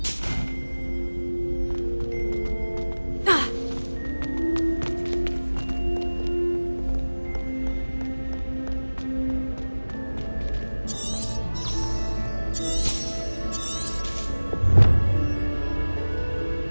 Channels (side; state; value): both; inverted; correlation -1.00